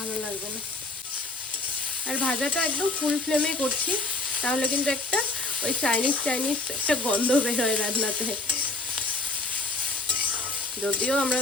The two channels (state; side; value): quieter; right; 3.1 dB